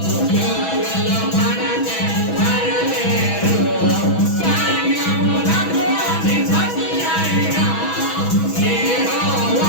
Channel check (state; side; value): late; right; 6.1 ms